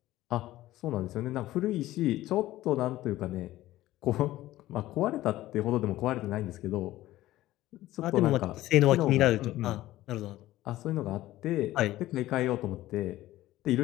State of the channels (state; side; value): quieter; right; 15.7 dB